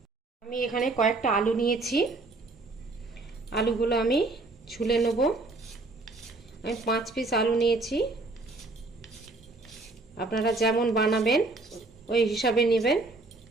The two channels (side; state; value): left; quieter; 3.2 dB